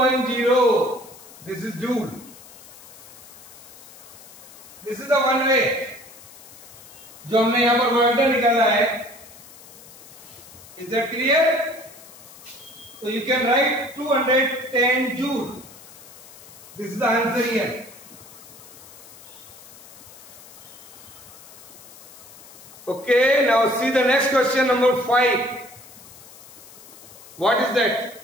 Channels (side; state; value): left; noise; hiss, 19 dB below the sound